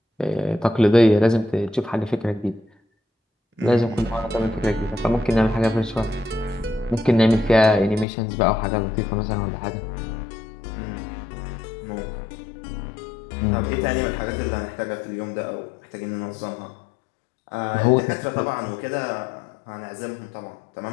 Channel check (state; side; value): drops out; right; at 8.1 s